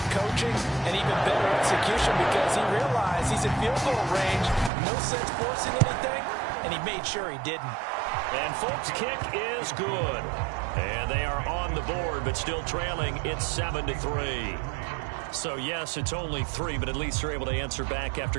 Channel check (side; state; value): left; drops out; at 4.7 s